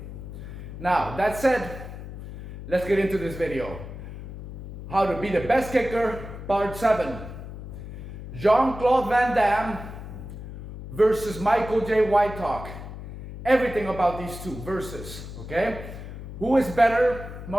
Now, that said, let's get into this video. How to be the best kicker, part 7. Jean-Claude Van Damme versus Michael J. White talk. Everything about these two versus, okay? Who is better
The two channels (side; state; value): left; noise; hum, 11 dB below the sound